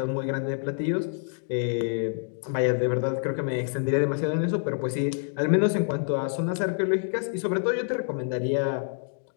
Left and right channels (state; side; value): silent; right; digital silence